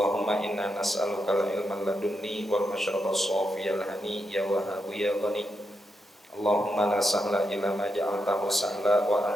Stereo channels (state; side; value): normal; both; correlation 0.84